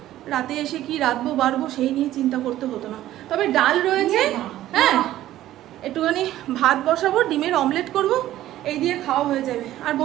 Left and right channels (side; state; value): left; quieter; 13.9 dB